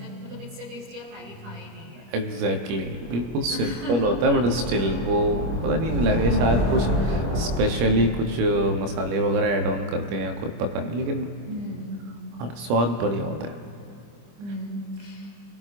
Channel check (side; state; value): left; late; 25 ms